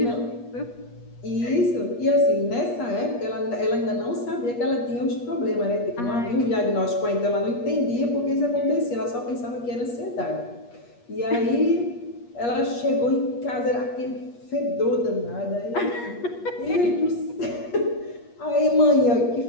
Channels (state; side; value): late; right; 8.4 ms